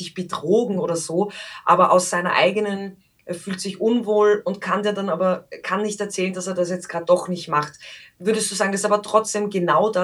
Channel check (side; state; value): both; identical; correlation 1.00